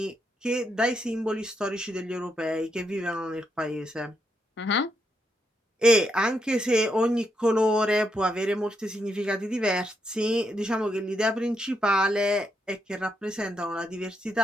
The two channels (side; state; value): both; normal; correlation 0.80